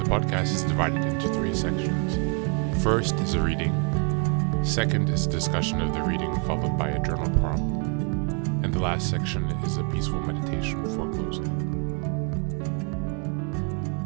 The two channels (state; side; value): quieter; left; 36.4 dB